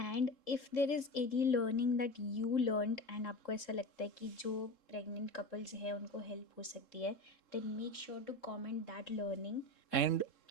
if there is any learning that you learned and आपको ऐसा लगता है कि जो प्रेग्नेंट कपल्स हैं उनको हेल्प हो सकती है, then make sure to comment that learning. And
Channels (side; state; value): right; late; 3.7 ms